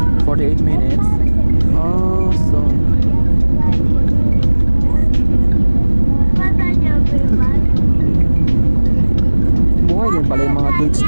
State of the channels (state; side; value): inverted; both; correlation -1.00